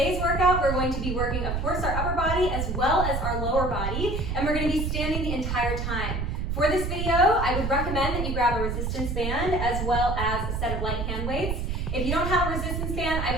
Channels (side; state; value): right; noise; rumble, 2 dB below the sound